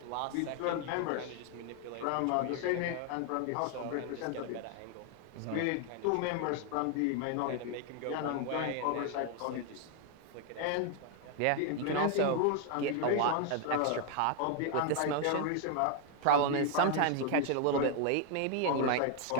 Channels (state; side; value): different; both; correlation 0.01